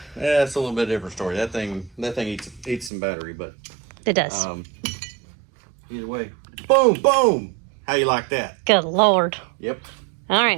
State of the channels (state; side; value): drops out; left; at 2.9 s